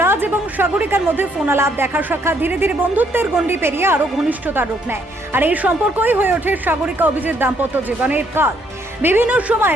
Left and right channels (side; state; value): both; normal; correlation 0.69